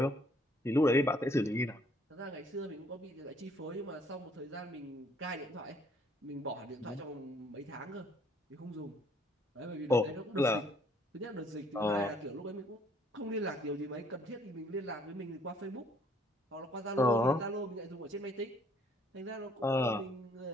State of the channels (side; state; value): both; normal; correlation 0.63